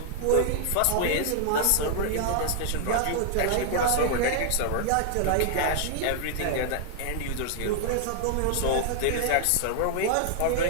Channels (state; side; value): different; both; correlation -0.01